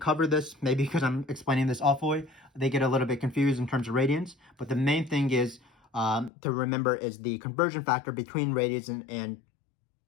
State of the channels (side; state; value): right; drops out; at 6.3 s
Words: this, maybe because I'm explaining this awfully, they get a little bit confused in terms of radians. But the main thing is to remember is the conversion factor between radians and